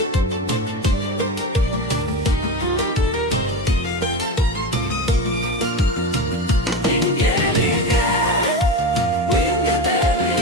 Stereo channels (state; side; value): normal; both; correlation 0.22